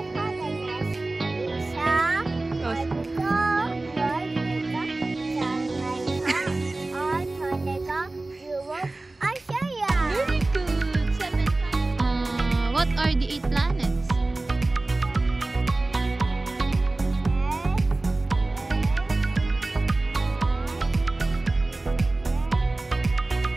What are the 8 planets?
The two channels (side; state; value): left; quieter; 3.0 dB